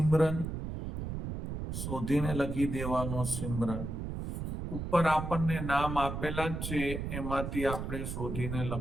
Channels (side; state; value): right; noise; rumble, 5 dB below the sound